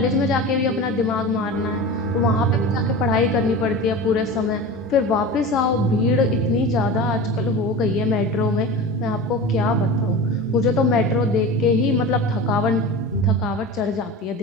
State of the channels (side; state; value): both; normal; correlation 0.31